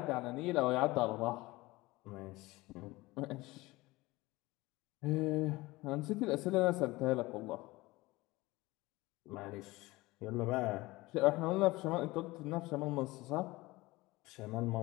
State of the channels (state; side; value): quieter; right; 20.6 dB